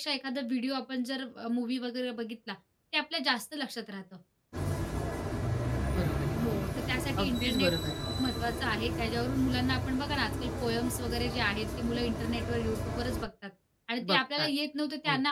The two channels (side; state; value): both; identical; correlation 1.00